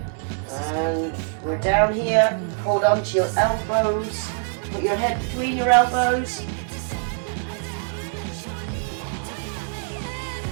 this is And we're down here, hold on to your elbows, put your head between your elbows.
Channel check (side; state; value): left; silent; digital silence